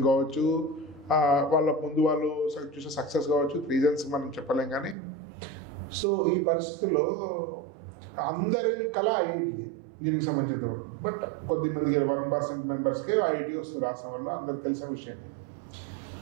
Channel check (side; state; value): left; drops out; at 5.0 s